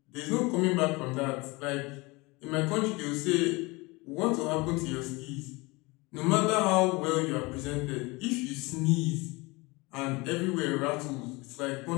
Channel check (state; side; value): quieter; right; 24.6 dB